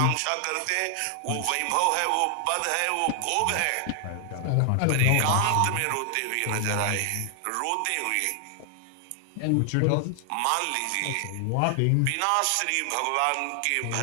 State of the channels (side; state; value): both; different; correlation 0.00